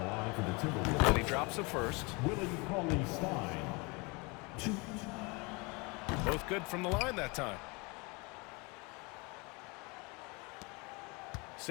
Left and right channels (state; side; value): quieter; right; 28.2 dB